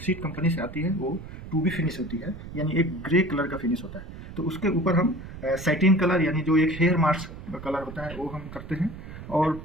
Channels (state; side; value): noise; right; rumble, 12 dB below the sound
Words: शीट कंपनी से आती है वो टू बी फिनिश होती है, यानी एक ग्रे कलर का फिनिश होता है। तो उसके ऊपर हम सैटिन कलर यानी जो एक हेयर मास्क कलर होता है वो हम करते हैं, और